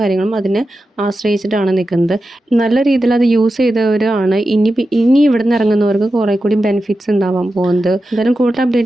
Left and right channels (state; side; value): normal; both; correlation 0.91